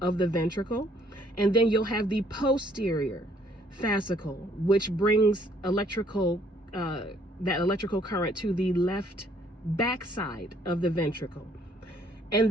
of the ventricle. And then you'll have the posterior fascicle, which brings that electrical current to the left backside of the ventricle.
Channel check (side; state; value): both; normal; correlation 0.64